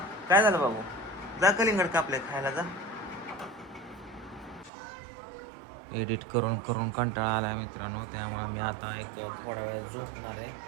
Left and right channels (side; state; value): left; drops out; at 4.7 s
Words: काय झालं बाबू? जा कलिंगड कापले खायला जा. एडिट करून करून कंटाळा आला मित्रांनो, त्यामुळे मी आता एक थोड्या वेळ झोपणार आहे.